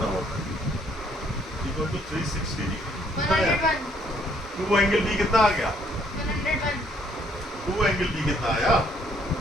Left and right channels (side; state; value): both; normal; correlation 0.66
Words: होगा। Equal to 360 degree. 101 two angle B कितना आ गया, 101 टू एंगल बी कितना आया,